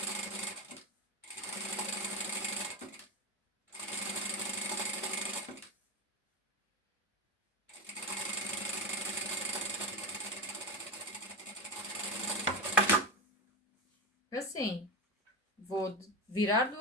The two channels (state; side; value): normal; both; correlation 0.19